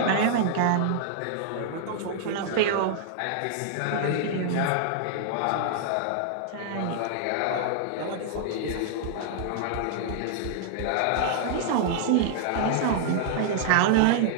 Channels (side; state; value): both; different; correlation -0.01